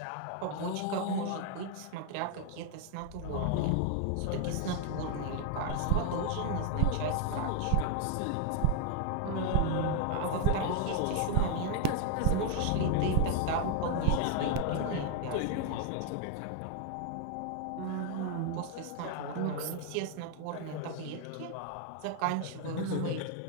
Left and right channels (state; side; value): different; both; correlation 0.00